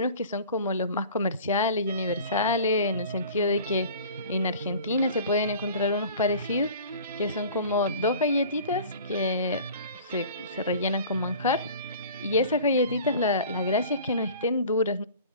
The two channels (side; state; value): both; inverted; correlation -0.43